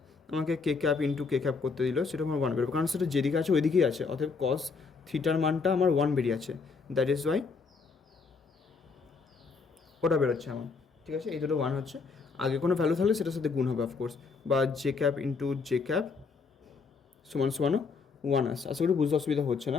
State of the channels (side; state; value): right; quieter; 4.8 dB